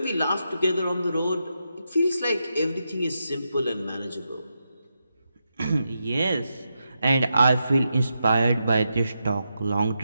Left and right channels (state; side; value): inverted; both; correlation -0.86